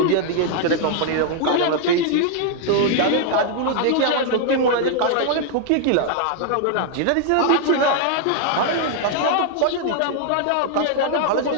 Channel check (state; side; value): different; both; correlation 0.00